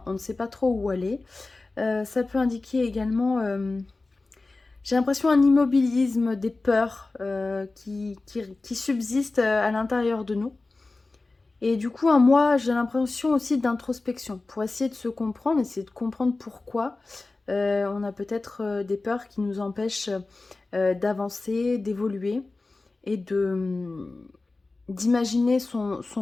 on ne sait pas trop où aller. Ça peut indiquer également j'ai l'impression un immobilisme, des peurs qui subsistent à l'intérieur de nous. Et du coup, moi, j'ai l'impression aussi d'introspection pour essayer de se comprendre, essayer de comprendre pourquoi on a peut-être des peurs qui nous empêchent d'avancer, d'évoluer et d'imaginer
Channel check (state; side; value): quieter; right; 3.4 dB